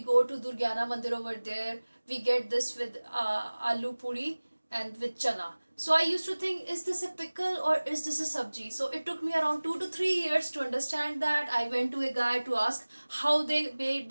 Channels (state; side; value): inverted; both; correlation -1.00